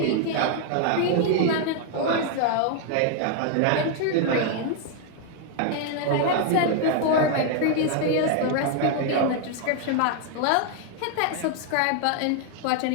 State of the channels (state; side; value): different; both; correlation 0.00